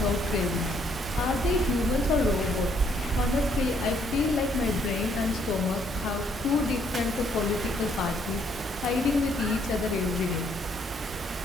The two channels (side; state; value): both; normal; correlation 0.68